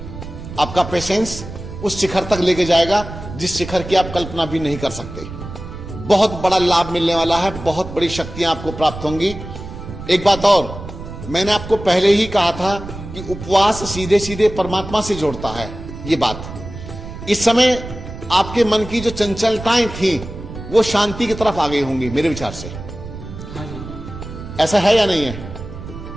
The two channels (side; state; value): right; noise; rumble, 11 dB below the sound